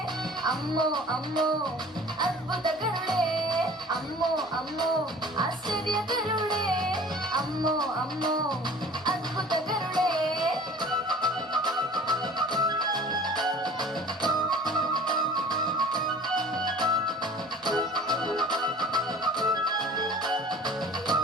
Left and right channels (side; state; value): both; normal; correlation 0.45